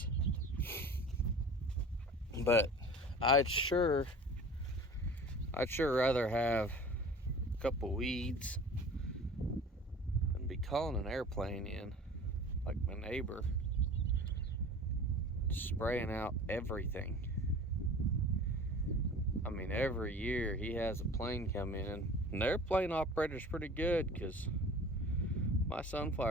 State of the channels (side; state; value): both; normal; correlation 0.41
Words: but I'd sure rather have a couple weeds than be calling an airplane in like my neighbor, spraying out everything. I mean, every year he has a plane come in, and the airplane operator's pretty good, because my